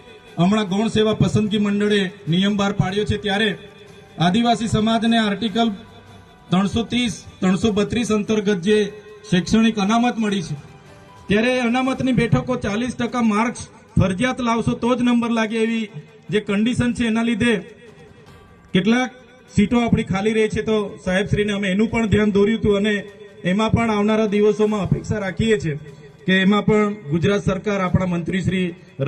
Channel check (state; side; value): identical; both; correlation 1.00